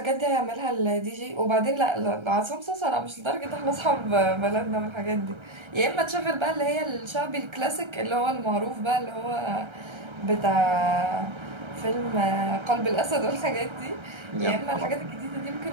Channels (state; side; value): late; left; 1.3 ms